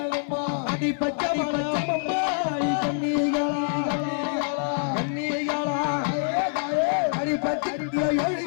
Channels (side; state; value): right; silent; digital silence